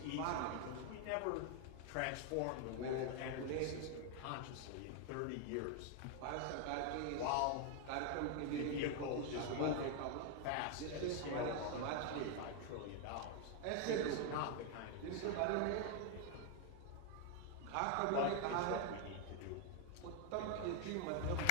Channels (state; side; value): different; both; correlation 0.00